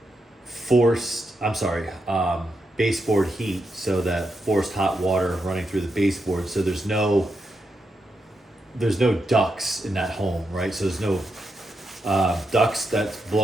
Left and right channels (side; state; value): both; normal; correlation 0.84